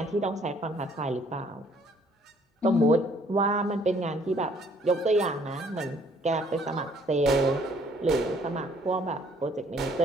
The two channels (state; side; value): normal; both; correlation 0.62